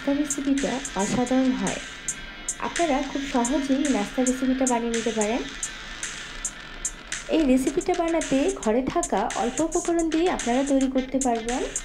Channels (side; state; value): both; identical; correlation 1.00